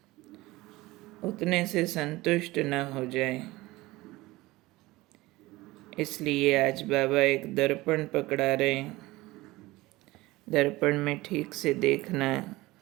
उतने से संतुष्ट न हो जाए। इसलिए आज बाबा एक दर्पण पकड़ा रहे हैं। दर्पण में ठीक से देखना है।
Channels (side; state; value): left; quieter; 19.7 dB